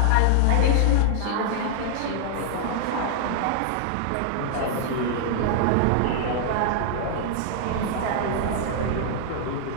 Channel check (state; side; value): different; both; correlation -0.01